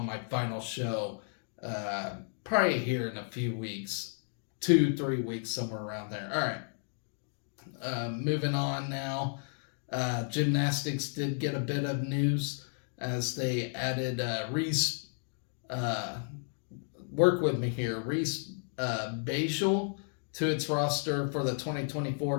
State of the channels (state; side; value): silent; right; 56 dB below the other